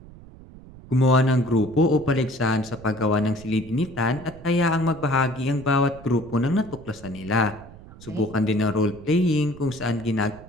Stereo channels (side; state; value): right; noise; rumble, 19 dB below the sound